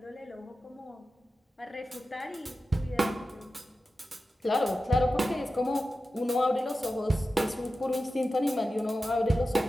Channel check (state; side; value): normal; both; correlation 0.93